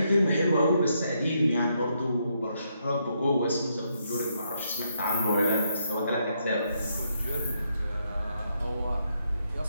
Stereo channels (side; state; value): both; inverted; correlation -0.77